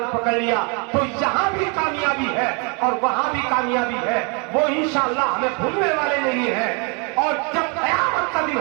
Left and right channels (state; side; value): quieter; left; 33.6 dB